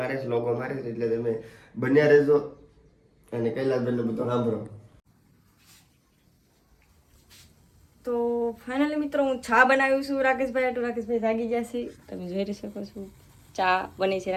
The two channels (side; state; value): both; identical; correlation 1.00